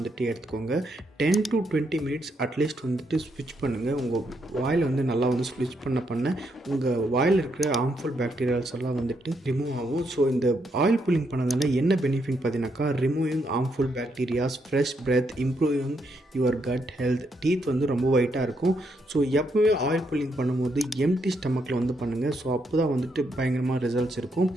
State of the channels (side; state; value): both; normal; correlation 0.78